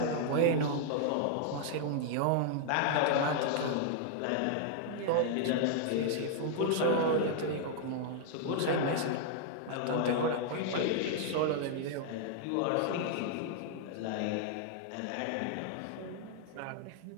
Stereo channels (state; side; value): different; both; correlation -0.01